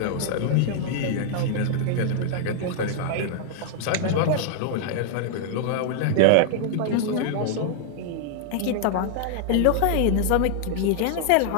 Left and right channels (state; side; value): different; both; correlation 0.00